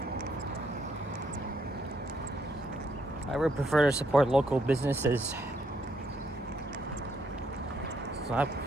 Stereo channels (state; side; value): normal; both; correlation 0.73